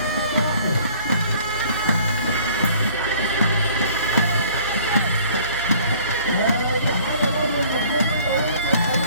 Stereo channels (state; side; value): inverted; both; correlation -0.54